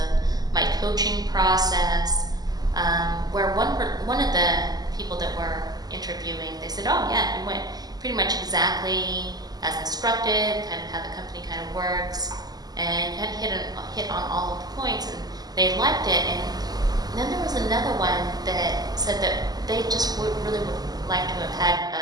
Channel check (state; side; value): late; left; 0.19 ms